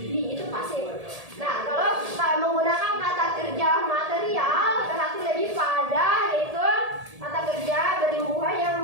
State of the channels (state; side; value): late; left; 1.7 ms